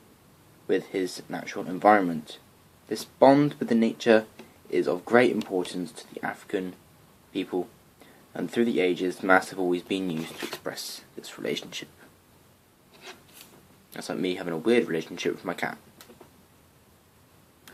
with his natural environment. This bond with the nature is of great importance to the African people, and through the ages, masks have always been used to express this relationship. That's like me having a weird relationship with my cat.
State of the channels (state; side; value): identical; both; correlation 1.00